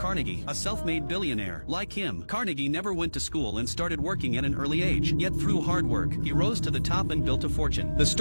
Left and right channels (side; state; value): both; inverted; correlation -1.00